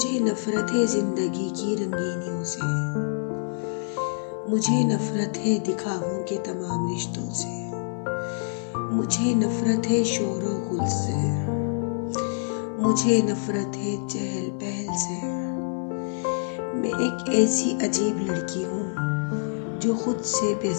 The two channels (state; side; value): silent; right; 56 dB below the other